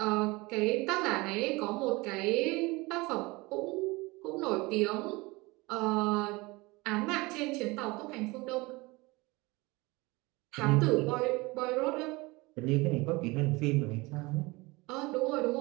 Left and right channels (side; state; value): left; quieter; 23.5 dB